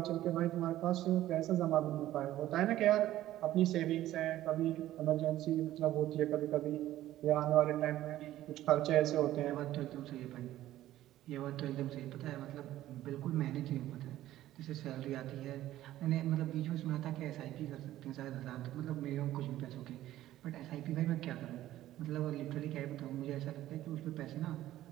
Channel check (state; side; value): quieter; left; 14.1 dB